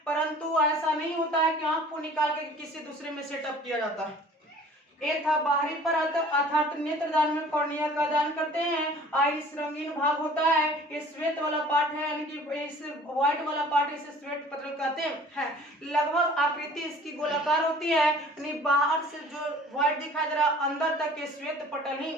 परंतु ऐसा नहीं होता है कि आंख को निकाल के किसी दूसरे में सेटअप किया जाता है। ये था बाहरी परत, अर्थात नेत्रदान में कॉर्निया का दान करते हैं। आइरिस रंगीन भाग होता है। ये श्वेत वाला पार्ट है, यानी कि इस व्हाइट वाला पार्ट इसे श्वेत पटल कहते हैं। लगभग आकृति इसकी गोलाकार होती है, यानी बाहर से जो व्हाइट दिखाई दे रहा है अंदर तक ये श्वेत पटल ही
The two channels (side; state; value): both; normal; correlation 0.48